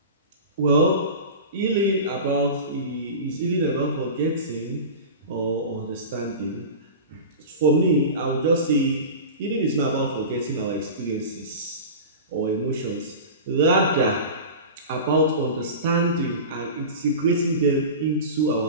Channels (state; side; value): inverted; both; correlation -0.30